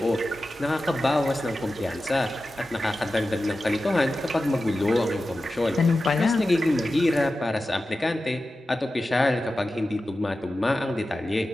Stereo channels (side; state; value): both; normal; correlation 0.93